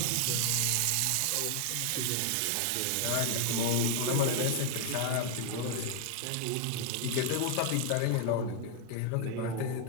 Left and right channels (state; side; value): different; both; correlation 0.00